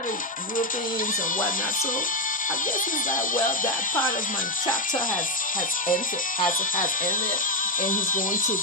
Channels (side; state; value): both; normal; correlation 0.08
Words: of Europeans and whatnot. So I guess he's like, well, that part of my chapter has ended, and he's going to